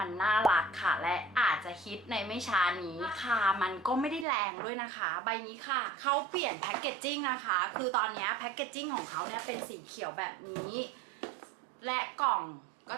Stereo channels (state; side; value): drops out; left; at 4.2 s